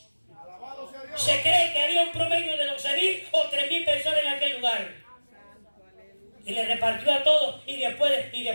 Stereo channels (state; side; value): inverted; both; correlation -1.00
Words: Se cree que había un promedio de 12,000 o 3,000 personas en aquel lugar. Y le repartió a todos y después